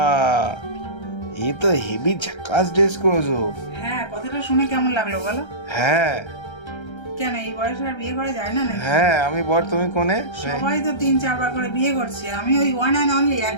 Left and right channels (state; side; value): late; right; 1.3 ms